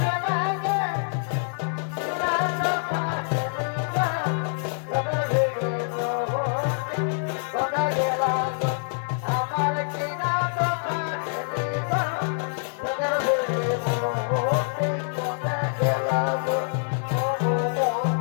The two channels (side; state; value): right; silent; digital silence